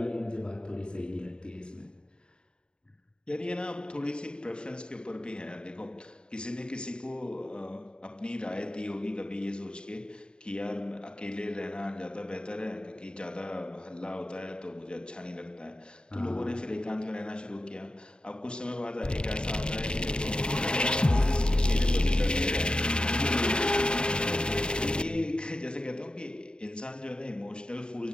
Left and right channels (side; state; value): right; late; 0.050 ms